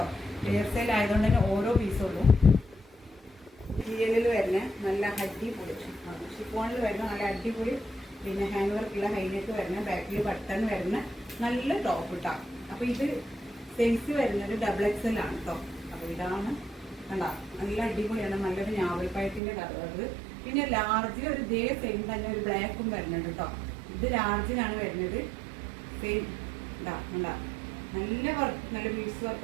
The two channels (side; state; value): left; drops out; at 19.4 s